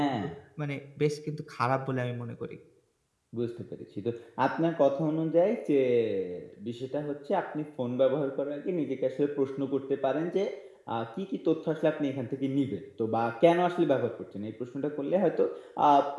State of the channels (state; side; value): identical; both; correlation 1.00